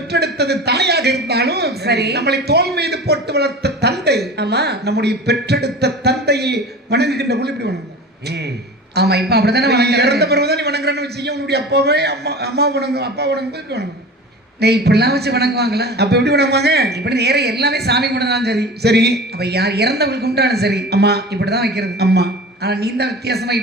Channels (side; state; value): both; normal; correlation 0.35